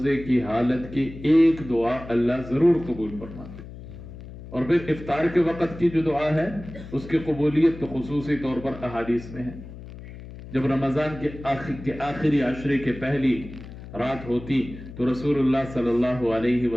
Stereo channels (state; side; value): noise; left; hum, 14 dB below the sound